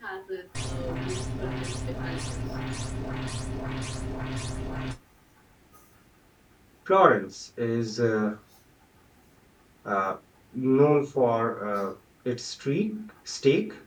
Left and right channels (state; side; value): identical; both; correlation 1.00